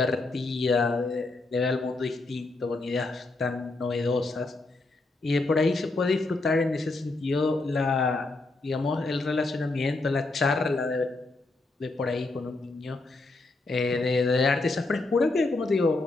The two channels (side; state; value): right; quieter; 3.2 dB